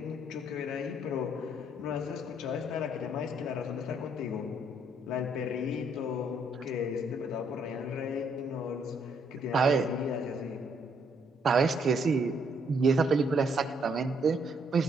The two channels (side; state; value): both; normal; correlation 0.70